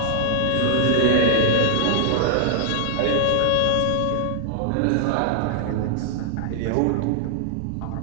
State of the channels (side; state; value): both; different; correlation -0.01